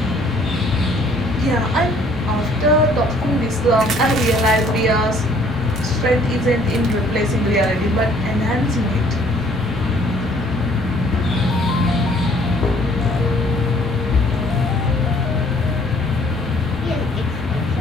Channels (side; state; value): left; noise; rumble, 16 dB below the sound